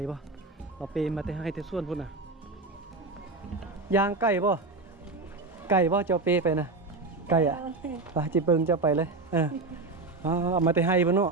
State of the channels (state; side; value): quieter; left; 3.6 dB